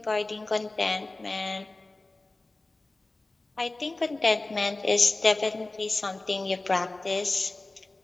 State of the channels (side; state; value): right; quieter; 3.1 dB